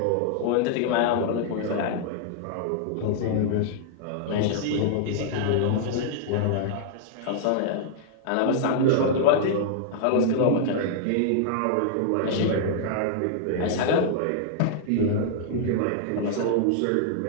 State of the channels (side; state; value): both; different; correlation -0.01